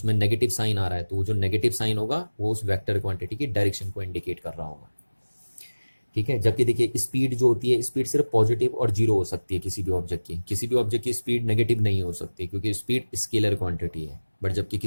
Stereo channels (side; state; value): both; inverted; correlation -1.00